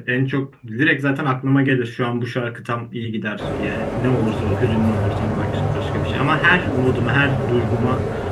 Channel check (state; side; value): identical; both; correlation 1.00